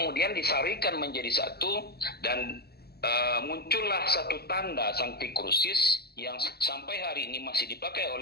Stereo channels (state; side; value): late; right; 0.46 ms